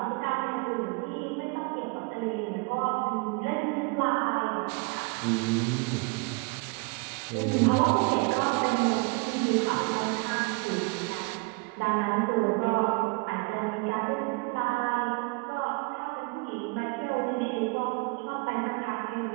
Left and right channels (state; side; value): quieter; left; 30.0 dB